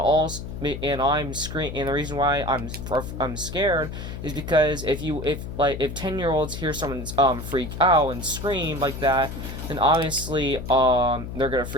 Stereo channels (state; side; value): noise; left; hum, 8 dB below the sound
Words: screaming, and the reason why I'm scared is because if 10-year-olds hear someone freak out and scream like that, then obviously they're gonna